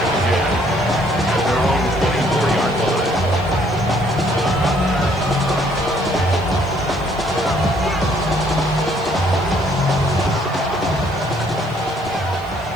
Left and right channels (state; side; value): noise; right; hiss, 27 dB below the sound